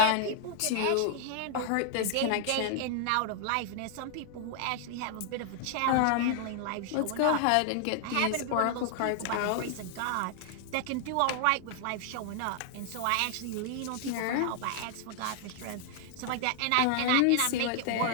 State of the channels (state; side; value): different; both; correlation 0.00